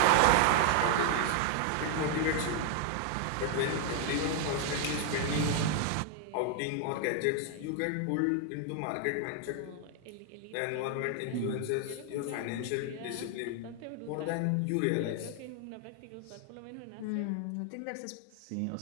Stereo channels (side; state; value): both; different; correlation 0.00